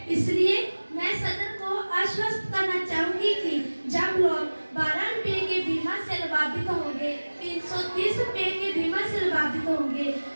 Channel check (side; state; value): both; inverted; correlation -1.00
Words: इसलिए मैं सदन को आश्वस्त करना चाहूंगी कि जब लोग 12 रुपये के बीमा से लाभान्वित होंगे, 330 रुपये के बीमा से लाभान्वित होंगे